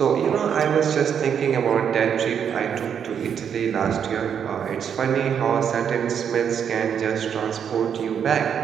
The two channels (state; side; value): quieter; left; 7.9 dB